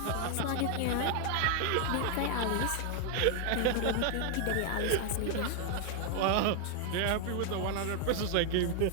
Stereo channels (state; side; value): different; both; correlation 0.00